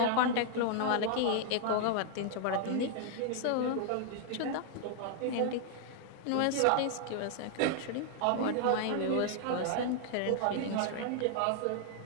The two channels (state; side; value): different; both; correlation 0.00